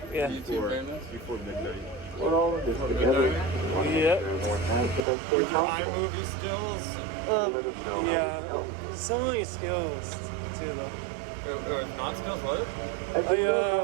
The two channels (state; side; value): drops out; left; at 5.1 s